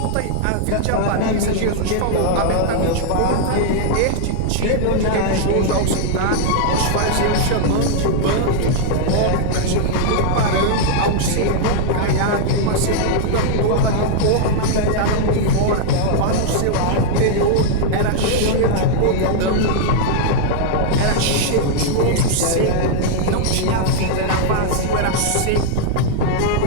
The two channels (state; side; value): different; both; correlation -0.01